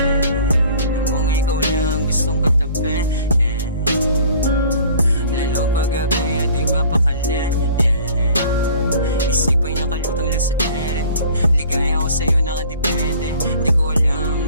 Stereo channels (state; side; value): inverted; both; correlation -0.49